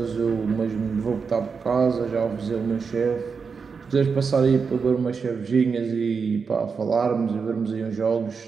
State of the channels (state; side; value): quieter; left; 5.4 dB